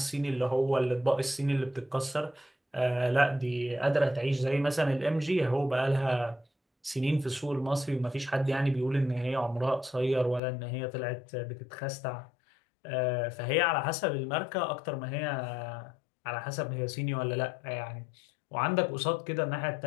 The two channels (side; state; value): right; drops out; at 10.4 s